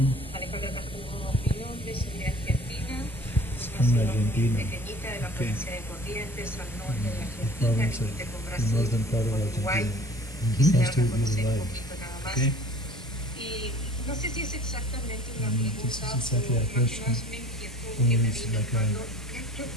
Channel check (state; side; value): normal; both; correlation 0.48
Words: Alejandra Castro, mi nombre, soy de Argentina, una ciudad pequeñita de la provincia de Corrientes, al norte de Argentina, límite con Brasil, con Uruguay. Quisiera conocer un poquito nada más. Y no sé si es exactamente una pregunta o más una inquietud que me vino cuando